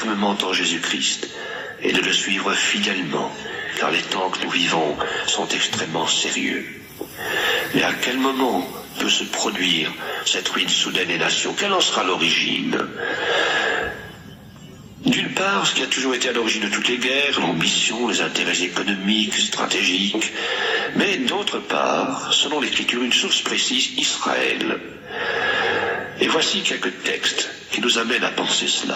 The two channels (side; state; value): both; identical; correlation 1.00